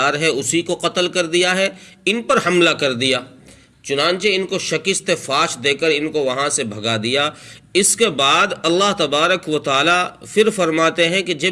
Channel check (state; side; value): identical; both; correlation 1.00